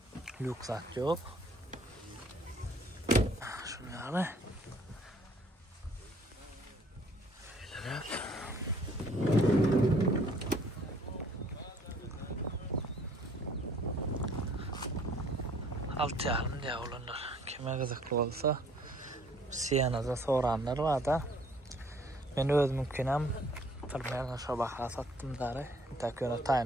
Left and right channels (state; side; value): normal; both; correlation 0.59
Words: Lüksat yok. Şunu yalı. Şöyle. Alt yarım diye olanlar. Kime kızıklı olsa Siena'da soranlar var da ben özümkinem Tırmayan şabaha sattım zare. Takıyorum